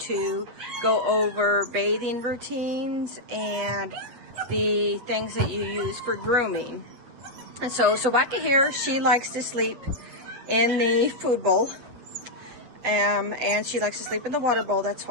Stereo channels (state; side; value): late; left; 8.1 ms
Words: go over bathing routines and the things that you use for grooming. And so Sobaka here, she likes to sleep in the food bowl. And she likes to sleep in the water bowl. That's